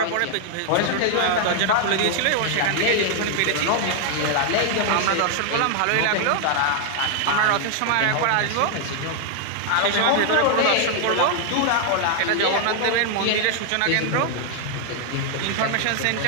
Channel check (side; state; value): both; different; correlation 0.00